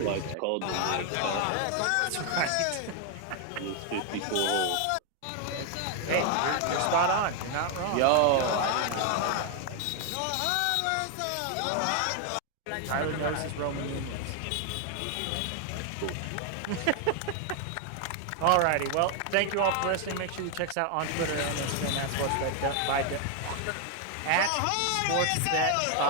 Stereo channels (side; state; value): both; different; correlation 0.00